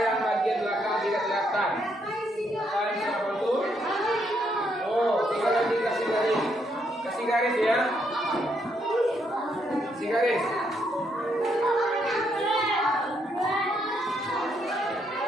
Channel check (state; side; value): normal; both; correlation 0.75